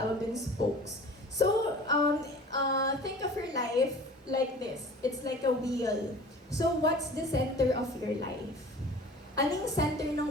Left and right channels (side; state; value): both; normal; correlation 0.43